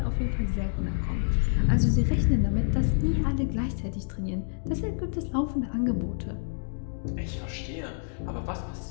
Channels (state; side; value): silent; right; digital silence